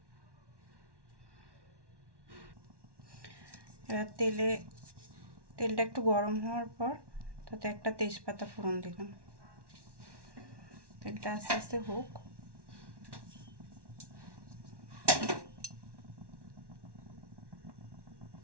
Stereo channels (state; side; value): late; left; 1.1 ms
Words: এবার তেলটা একটু গরম হওয়ার পর তাতে একটা তেজপাতা ফোড়ন দিলাম। তেলটা আস্তে আস্তে হোক।